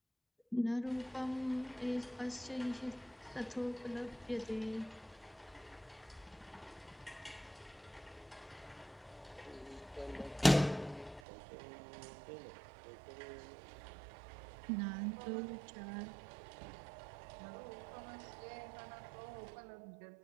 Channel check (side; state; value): left; drops out; at 11.2 s